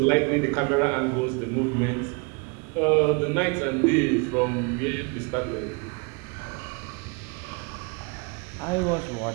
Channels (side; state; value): left; quieter; 32.1 dB